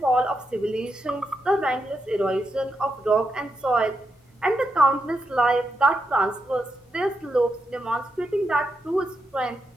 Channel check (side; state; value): both; normal; correlation 0.83